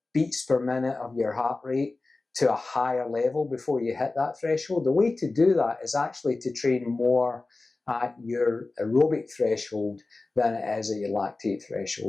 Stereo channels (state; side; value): quieter; right; 3.4 dB